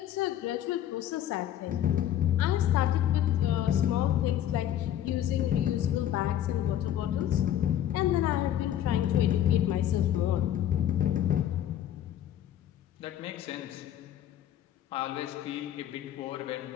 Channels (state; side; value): quieter; right; 11.3 dB